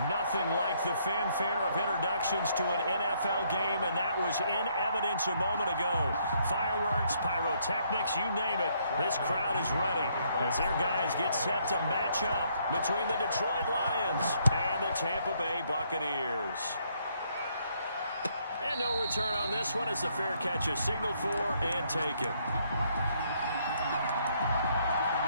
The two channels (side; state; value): both; inverted; correlation -0.70